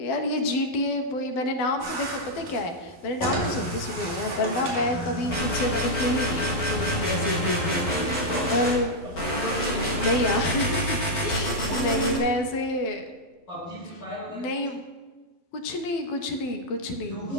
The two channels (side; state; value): right; late; 11 ms